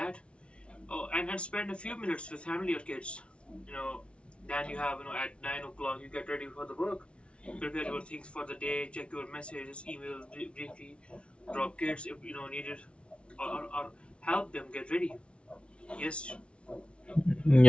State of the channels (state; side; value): late; right; 0.059 ms